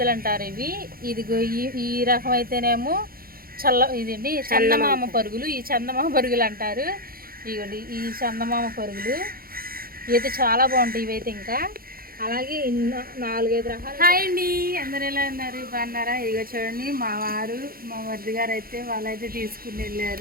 అంటారు ఇవి. ఇదిగో ఈ రకం అయితేనేమో ఇదండి చందమామ పరుగులు. ఈ చందమామ పరుగులు అంటారు. ఇవ్వండి ఈ చందమామ పరుగులు ఇవైతే చాలా బాగుంటాయి. ఇవైతే ఇంకా అలాగే 4-5 రకాలు. హాయ్ అండి, అందరు ఎలా ఉన్నారు, బాగున్నారా? ఇదిగో చూడండి మా వారు, మా మరిది గారు అయితే వాళ్ళైతే తీసుకుని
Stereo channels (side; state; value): left; late; 0.43 ms